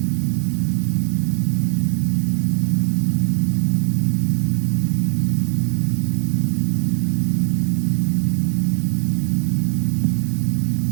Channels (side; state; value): left; silent; digital silence